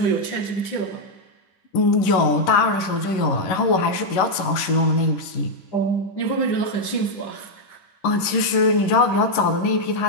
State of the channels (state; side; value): late; right; 11 ms